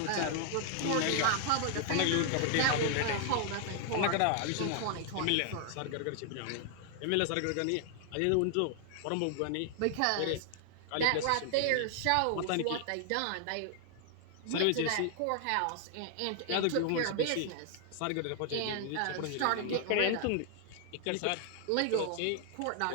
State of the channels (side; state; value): both; different; correlation 0.00